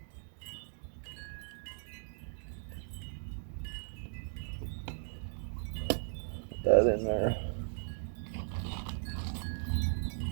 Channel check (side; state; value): left; silent; digital silence